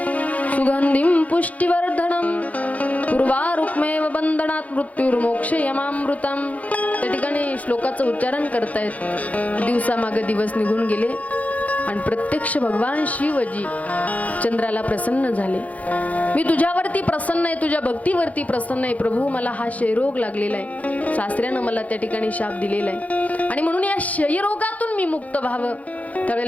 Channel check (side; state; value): right; late; 0.071 ms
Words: सुगंधिं पुष्टिवर्धनम पूर्वारुक्मेव बंधनात् मृत्युर्मोक्षयमामृतम. त्या ठिकाणी श्लोकाचं उच्चारण करतायत. दिवसामागे दिवस निघून गेले आणि प्रत्यक्ष भगवान शिवजी चंद्राला प्रसन्न झाले. मी तुझ्यावरती प्रसन्न आहे, तुझ्या भक्तीवरती प्रसन्न आहे प्रभू. मला हा क्षयरोग लागलेला आहे, सासऱ्यानं मला त्या ठिकाणी शाप दिलेला आहे आणि म्हणून या क्षयरोगातून मी मुक्त व्हावं.